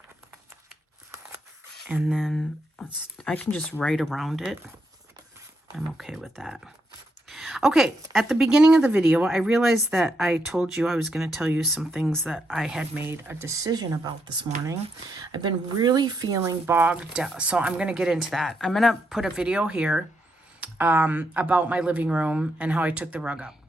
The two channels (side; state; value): both; normal; correlation 0.80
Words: And then I can just write around it. I'm okay with that. Okay, at the beginning of the video, I realized that I told you I was going to tell you some things that I had made a decision about this morning. I've been really feeling bogged down, so I'm going to get into that. I'm going to put a video here about my living room and how I took the rug up.